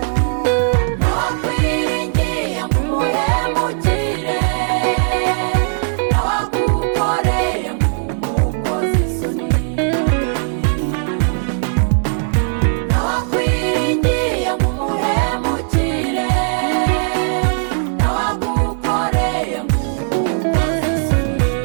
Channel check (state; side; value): silent; left; 68 dB below the other